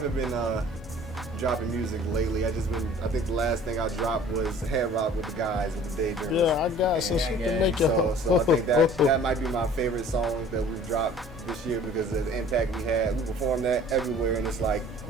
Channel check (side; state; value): both; normal; correlation 0.49